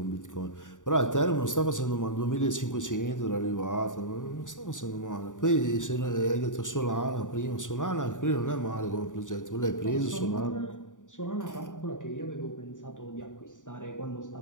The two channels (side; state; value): right; late; 0.87 ms